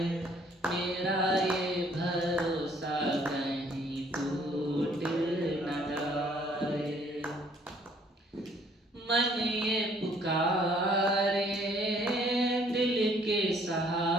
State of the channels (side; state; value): both; normal; correlation 0.62